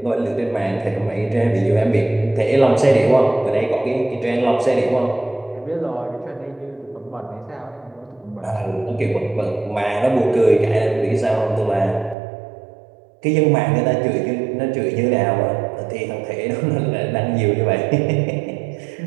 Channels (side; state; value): left; drops out; at 12.2 s